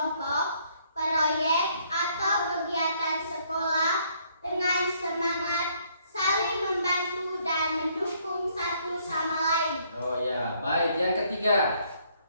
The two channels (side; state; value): both; inverted; correlation -0.67